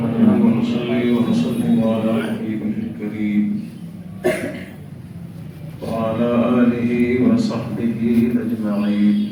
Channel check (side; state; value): both; identical; correlation 1.00